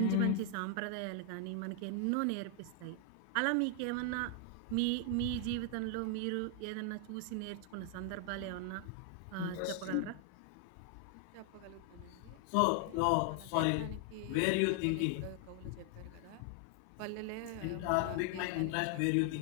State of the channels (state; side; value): different; both; correlation 0.00